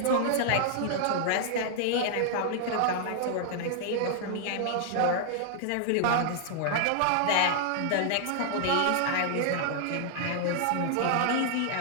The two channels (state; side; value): different; both; correlation -0.01